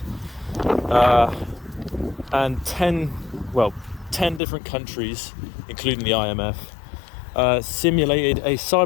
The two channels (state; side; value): drops out; right; at 4.4 s